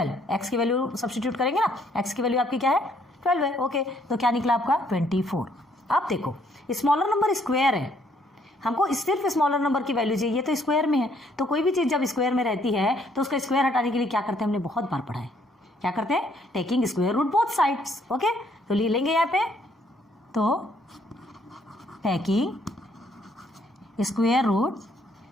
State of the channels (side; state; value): both; normal; correlation 0.67